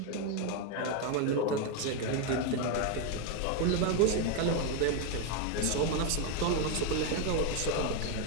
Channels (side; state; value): both; different; correlation 0.02